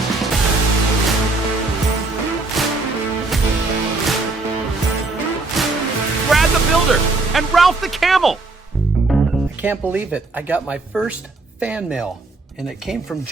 Brad the Builder and Ralph the Camel. I can't believe it. I got my first fan mail, and it came from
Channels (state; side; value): quieter; left; 3.4 dB